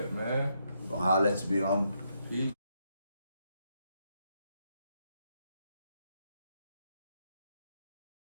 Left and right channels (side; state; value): both; inverted; correlation -0.78